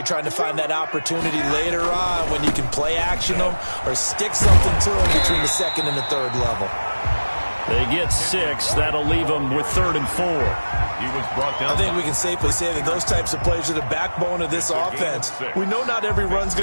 trying to find that opportunity later on when you can play action them or stick something to them between the 2nd and the 3rd level. They get 6. That'll leave them with 3rd and 4. He was brought down. I think we can safely say that those types of plays are the backbone of this offense. We know not every run's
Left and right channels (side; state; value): both; inverted; correlation -1.00